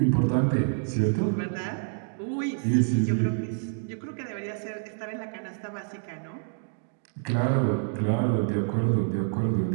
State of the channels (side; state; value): left; silent; digital silence